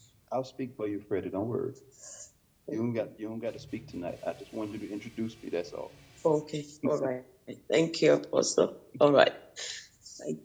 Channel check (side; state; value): both; identical; correlation 1.00